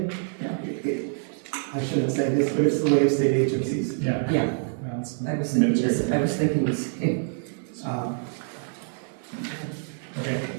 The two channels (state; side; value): silent; left; digital silence